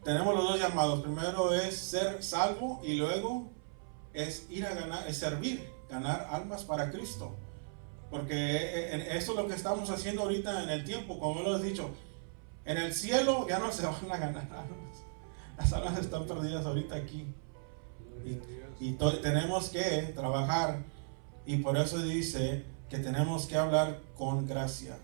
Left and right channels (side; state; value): left; silent; 54 dB below the other